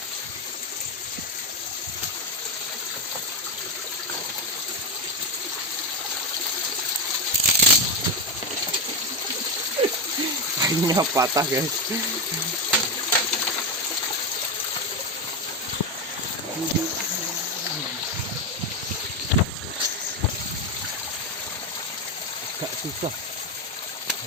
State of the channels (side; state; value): both; normal; correlation 0.11